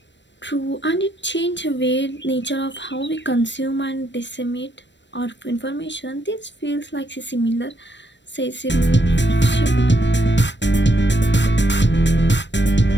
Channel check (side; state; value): right; late; 0.53 ms